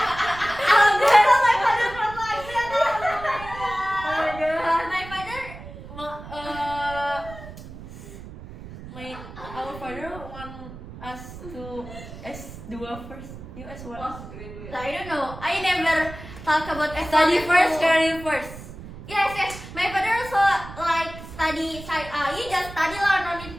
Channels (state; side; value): noise; right; rumble, 14 dB below the sound